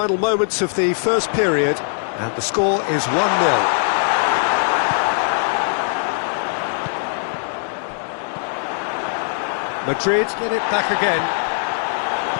moments of the first period, and the score is 1-0. Madrid get it back again.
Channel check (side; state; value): right; silent; digital silence